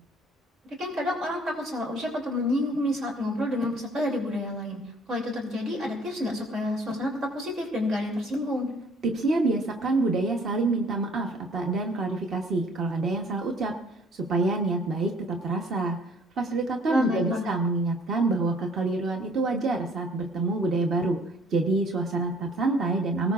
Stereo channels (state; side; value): normal; both; correlation 0.56